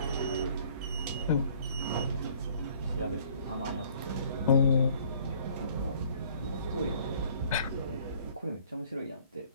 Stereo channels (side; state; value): both; inverted; correlation -0.57